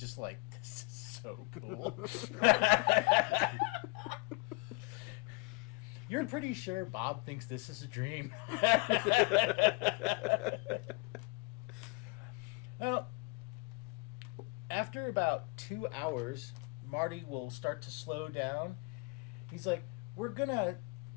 like, this is so cool. You're pretty sure Bob thinks this is a dream. Well, after about 2 hours, Marty will start to slow down. He's like, we're gonna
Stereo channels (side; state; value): right; quieter; 27.4 dB